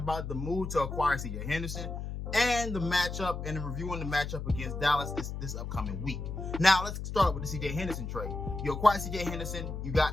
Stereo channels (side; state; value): left; noise; hum, 6 dB below the sound